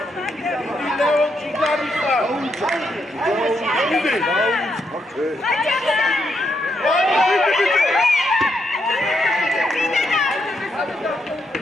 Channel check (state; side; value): normal; both; correlation 0.79